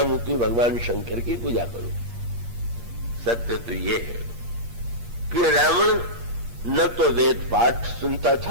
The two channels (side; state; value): left; late; 8.5 ms